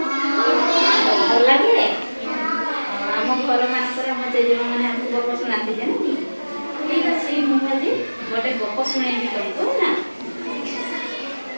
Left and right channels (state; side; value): inverted; both; correlation -1.00